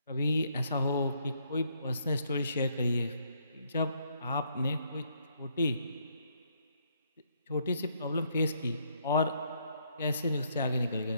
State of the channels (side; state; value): both; inverted; correlation -0.71